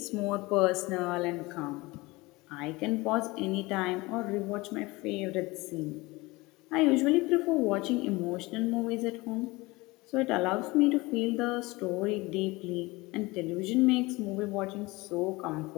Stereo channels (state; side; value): quieter; right; 22.4 dB